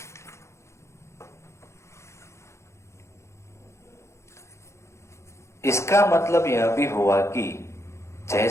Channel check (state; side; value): late; right; 0.13 ms